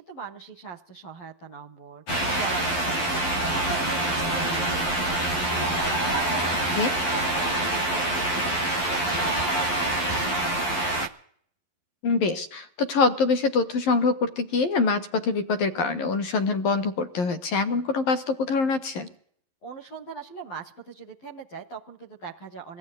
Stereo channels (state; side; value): late; right; 11 ms